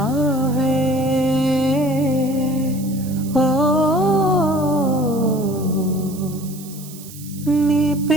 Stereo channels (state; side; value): noise; right; hiss, 17 dB below the sound